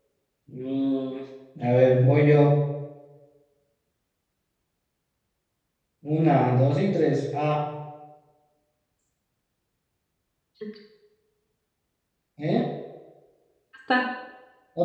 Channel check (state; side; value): identical; both; correlation 1.00